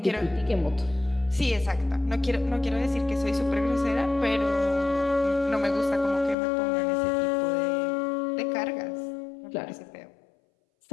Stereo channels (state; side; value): drops out; right; at 6.4 s